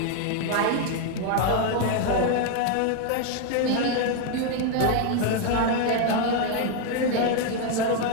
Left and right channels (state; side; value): different; both; correlation 0.01